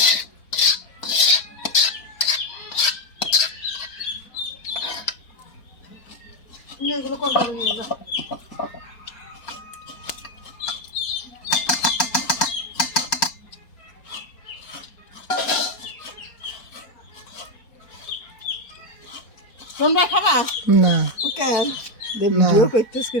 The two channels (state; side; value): late; right; 4.3 ms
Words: নিয়ে এগুলো কোন করে নিয়ে যা তোমরা খাবা না কেন ভিডিও করতেছ